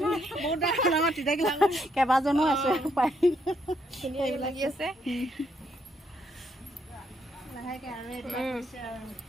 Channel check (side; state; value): both; normal; correlation 0.74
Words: ডাঙৰ তিতাকেৰেলা কেইবাজনো আছে ধুনীয়া এইবিলাক লাগি আছে লাহেকে আৰু